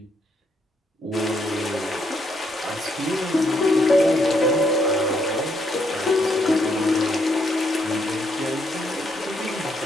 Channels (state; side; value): normal; both; correlation 0.74